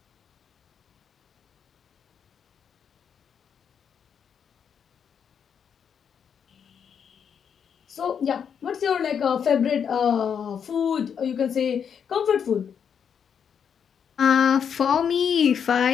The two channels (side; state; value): right; quieter; 7.5 dB